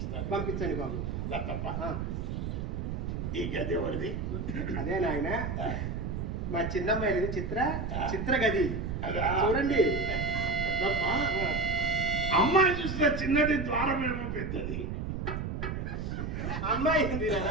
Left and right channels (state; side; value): noise; right; rumble, 3 dB below the sound